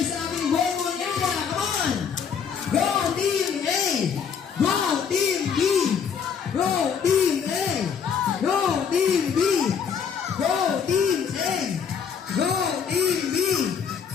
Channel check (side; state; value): right; quieter; 6.9 dB